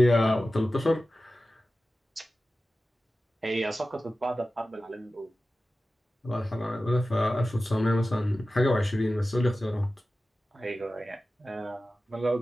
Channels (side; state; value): both; normal; correlation 0.95